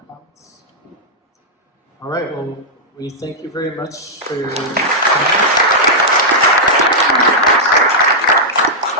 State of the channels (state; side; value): normal; both; correlation -0.08